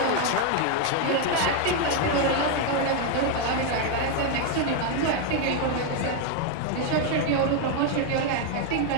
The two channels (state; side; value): different; both; correlation 0.01